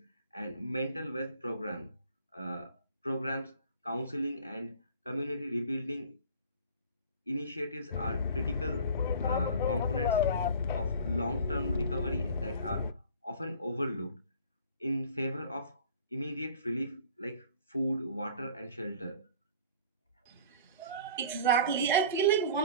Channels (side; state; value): both; inverted; correlation -0.44